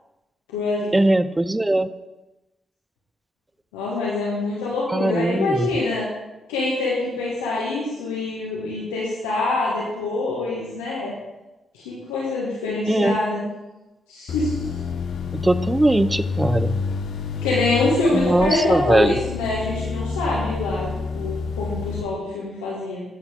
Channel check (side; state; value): both; normal; correlation 0.79